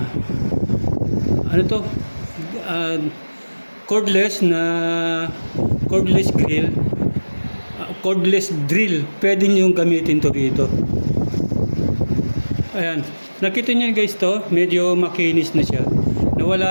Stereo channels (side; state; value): both; inverted; correlation -1.00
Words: cordless drill, pwede nyo gamitin to dito. Ayan, nakita nyo guys to, medyo makinis na siya.